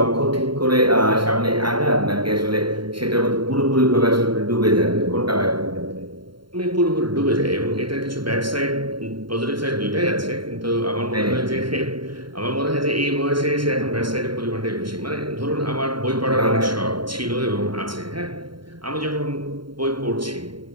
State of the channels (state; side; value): late; left; 0.73 ms